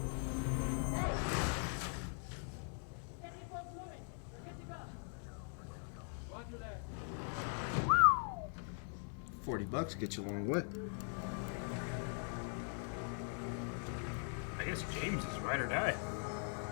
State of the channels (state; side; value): silent; right; 50 dB below the other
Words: $40 get you a long way. I guess James is ride or die.